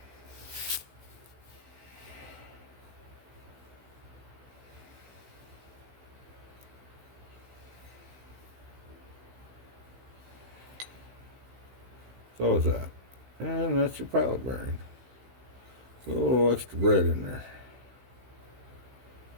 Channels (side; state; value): left; late; 16 ms